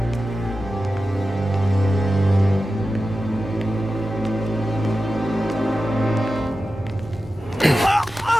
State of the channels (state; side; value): normal; both; correlation 0.93